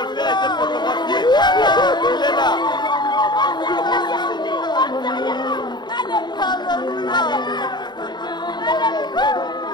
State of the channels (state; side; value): late; right; 0.21 ms